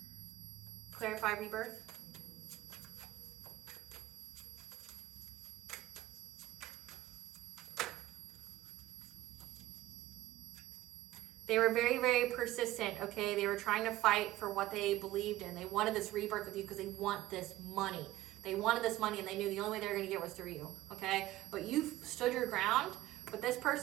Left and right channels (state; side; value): quieter; left; 16.1 dB